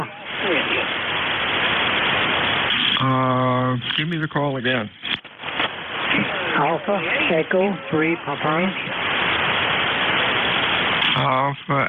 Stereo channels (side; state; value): both; identical; correlation 1.00